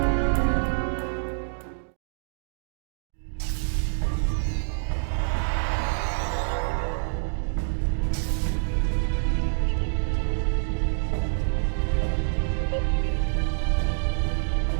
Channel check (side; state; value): left; silent; digital silence